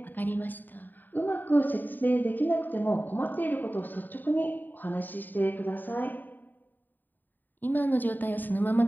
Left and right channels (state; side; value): late; right; 0.089 ms